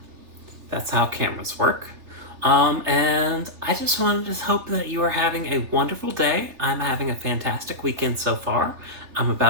That's how cameras work. And I just wanted to hope that you are having a wonderful day. I'm having a fantastic weekend so far. I'm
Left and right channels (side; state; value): left; late; 3.4 ms